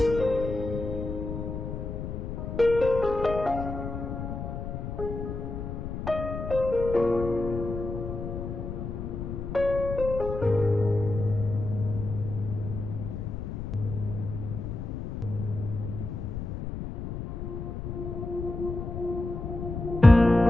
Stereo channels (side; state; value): left; noise; rumble, 6 dB below the sound